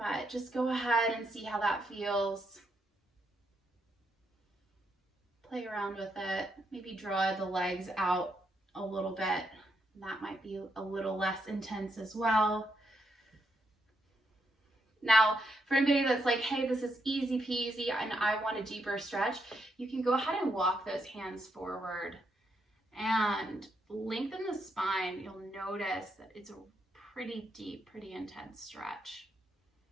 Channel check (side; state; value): both; normal; correlation 0.79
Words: just go ahead and see how that feels. Play around with it. Maybe draw the legs out a little bit. That might be a little less intense as well. Now, for anybody that's like, hey, this is easy peasy and I want a deeper stretch, you can go ahead and walk those hands forward and lengthen the spine. You'll notice that it's a pretty deep, pretty intense stretch.